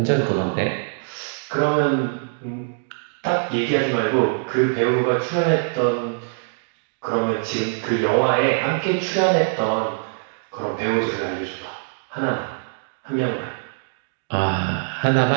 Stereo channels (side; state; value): left; silent; digital silence